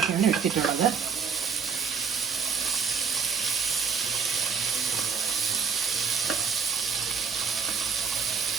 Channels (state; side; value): quieter; left; 6.2 dB